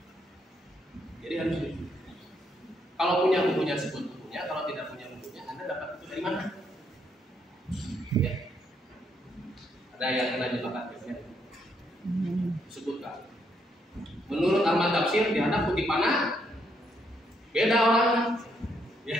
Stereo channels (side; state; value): both; normal; correlation 0.74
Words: Jadi harus jujur. Kalau punya bukunya sebut bukunya, kalau tidak punya bukunya, Anda dapat itu dari mana? Ya. Ada yang kena jebakan biasanya. Sebutkan. Menurut Ahmad Tafsir dianggap kutipannya beda orang. Ya.